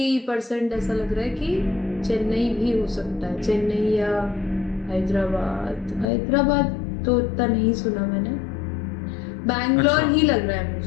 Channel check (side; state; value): right; drops out; at 6.1 s